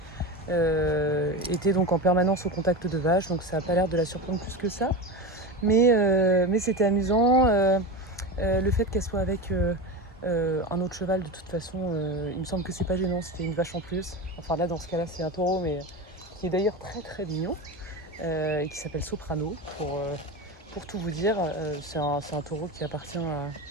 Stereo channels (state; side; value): normal; both; correlation 0.23